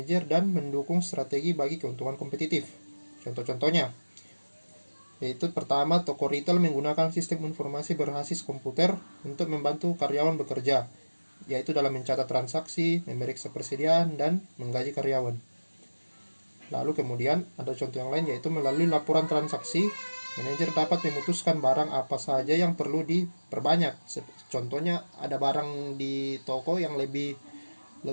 dan mendukung strategi bagi keuntungan kompetitif. Contoh-contohnya, yaitu pertama, toko retail menggunakan sistem informasi berbasis komputer untuk membantu karyawan bekerja, yaitu dalam mencatat transaksi, memeriksa persediaan, dan menggaji karyawan. Lalu kemudian ada contoh yang lain yaitu melalui laporan transaksi, manajer dapat memutuskan barang apa saja yang perlu diperbanyak. Contohnya ada barang di toko yang lebih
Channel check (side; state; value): both; inverted; correlation -1.00